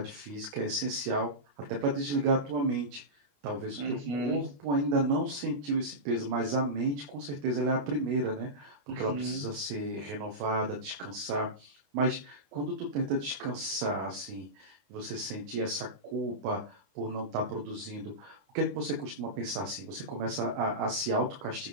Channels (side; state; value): left; late; 21 ms